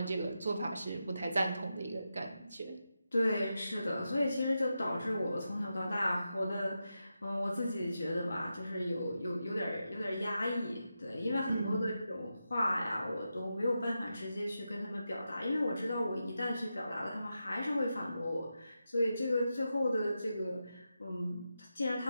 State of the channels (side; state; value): both; inverted; correlation -0.88